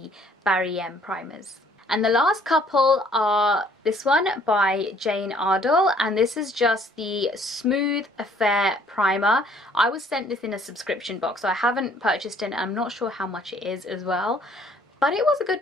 Barry M primers. And the last couple are this one by Jane Ardell, and this is just the Smooth Affair Primer. I was sent this in a subscription box, so I haven't purchased it, and I'm not sure how much it is as well. But it was a good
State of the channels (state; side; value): normal; both; correlation 0.60